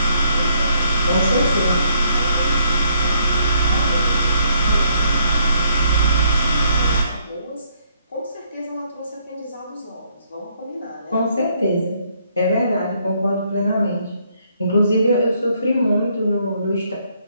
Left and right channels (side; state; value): both; inverted; correlation -0.69